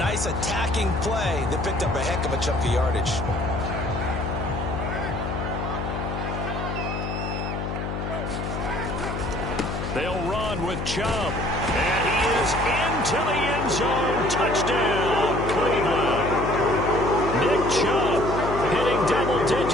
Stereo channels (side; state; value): left; noise; hum, 4 dB below the sound